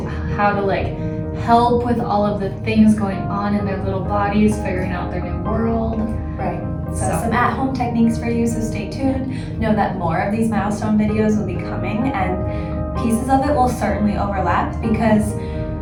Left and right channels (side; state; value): both; identical; correlation 1.00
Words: how to help with all of the things going on in their little bodies, figuring out their new world. Right. So some at-home techniques for you, so stay tuned. Know that more of these milestone videos will be coming, and pieces of it will certainly overlap because